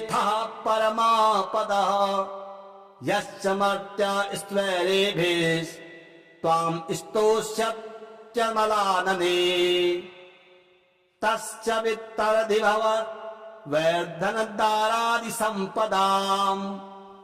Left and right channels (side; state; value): both; identical; correlation 1.00